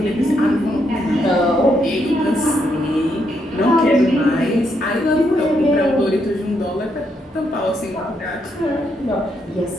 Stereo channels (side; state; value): both; normal; correlation 0.77